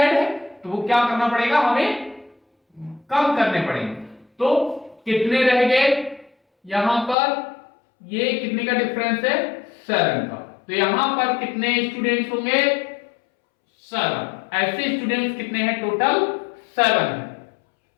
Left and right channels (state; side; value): drops out; right; at 7.2 s